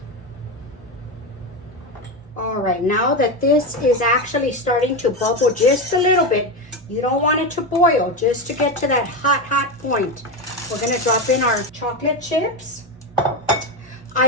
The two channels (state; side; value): normal; both; correlation 0.15